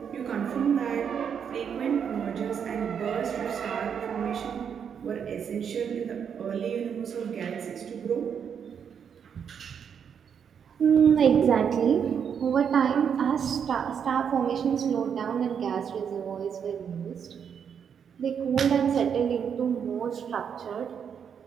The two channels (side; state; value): left; quieter; 7.5 dB